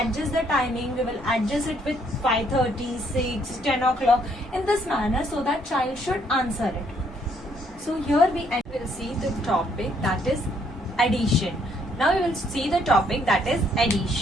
the timing, we will adjust it with 5:30, 6, 10 o'clock in this manner, so that child should answer it. So here we will see the topic, that is addition. Now we will see the topic, that is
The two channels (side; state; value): both; normal; correlation 0.68